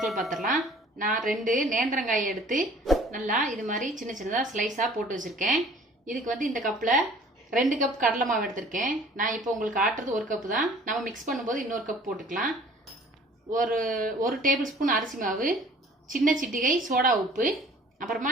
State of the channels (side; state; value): both; normal; correlation 0.51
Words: பார்த்துடலாம். நான் 2 நேந்திரங்காயை எடுத்து நல்லா இது மாதிரி சின்ன சின்னதாக ஸ்லைஸாக போட்டு வச்சுருக்கேன். இதுக்கு இந்த கப்பில் 2 கப் கடலை மாவு எடுத்திருக்கேன். நான் இப்போ உங்களுக்கு ஆட்டுறது 1 கப்பு தான். நம்ம மிக்ஸ் பண்ணும்போது இன்னொரு கப் போட்டுக்கலாம். ஒரு டேபிள் ஸ்பூன் அரிசி மாவு, சின்ன சிட்டிகை சோடா உப்பு, அப்புறமா